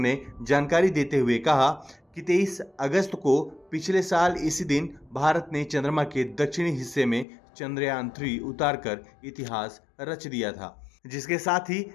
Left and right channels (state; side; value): drops out; right; at 7.2 s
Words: जानकारी देते हुए कहा कि 23 अगस्त को पिछले साल इसी दिन भारत ने चंद्रमा के दक्षिणी हिस्से में चंद्रयान 3 उतारकर इतिहास रच दिया था, जिसके साथ ही